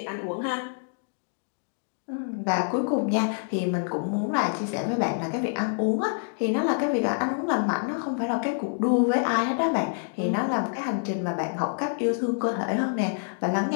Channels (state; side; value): silent; right; digital silence